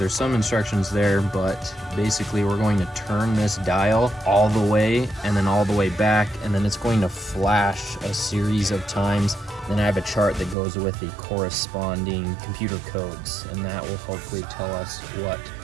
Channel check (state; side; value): drops out; left; at 10.6 s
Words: some instructions there, but basically we're going to turn this dial all the way and then all the way back, and then it's going to flash a series of times. Then I have a chart that goes with the corresponding computer codes, and that will hopefully tell us what